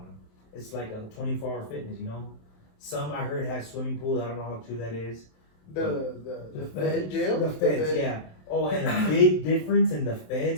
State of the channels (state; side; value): late; right; 27 ms